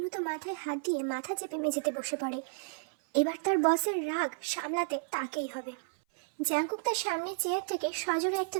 তো মাথায় হাত দিয়ে মাথা চেপে মেঝেতে বসে পড়ে। এবার তার বসের রাগ সামলাতে তাকেই হবে। জাঙ্কুক তার সামনে চেয়ার থেকে সজোরে একটা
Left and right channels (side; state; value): left; silent; 56 dB below the other